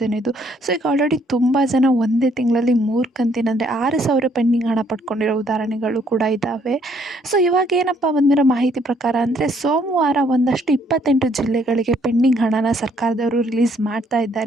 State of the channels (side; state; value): both; normal; correlation 0.67